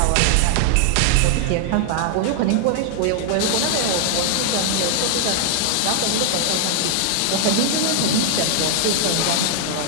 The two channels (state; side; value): different; both; correlation 0.00